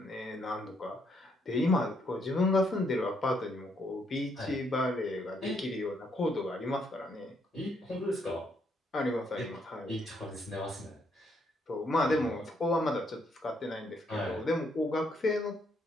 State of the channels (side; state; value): both; normal; correlation 0.73